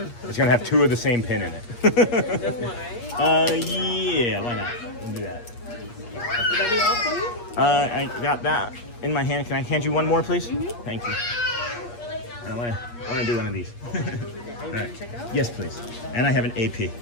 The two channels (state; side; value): late; right; 8.5 ms